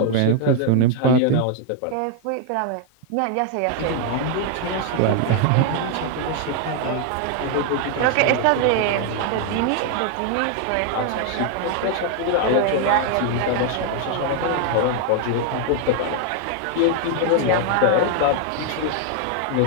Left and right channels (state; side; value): different; both; correlation 0.00